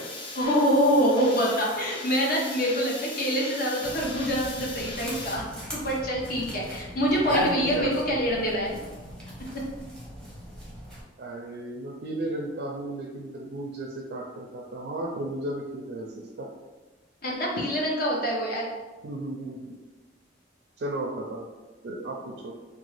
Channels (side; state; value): both; normal; correlation 0.24